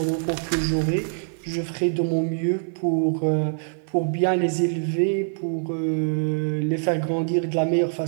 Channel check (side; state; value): left; silent; 55 dB below the other